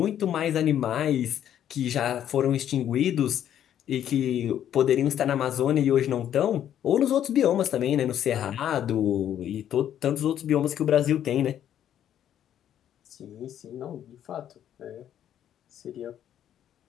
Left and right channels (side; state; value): right; quieter; 10.4 dB